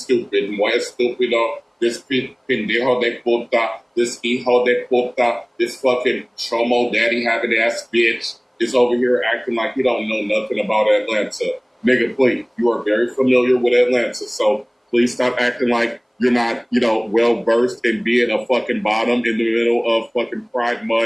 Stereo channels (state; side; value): identical; both; correlation 1.00